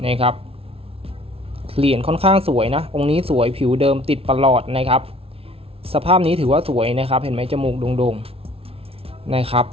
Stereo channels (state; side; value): late; left; 0.27 ms